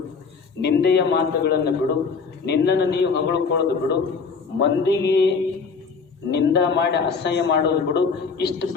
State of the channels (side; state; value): right; quieter; 5.1 dB